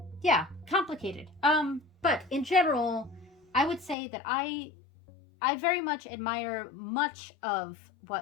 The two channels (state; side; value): drops out; right; at 4.0 s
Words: yeah, complicated. But in general, I would say that I very much admire much of